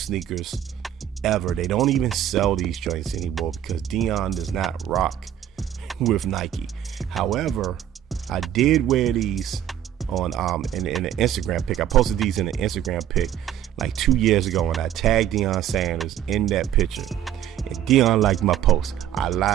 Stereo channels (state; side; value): quieter; left; 10.8 dB